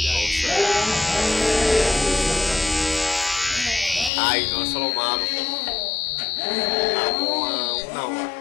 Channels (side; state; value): right; drops out; at 4.1 s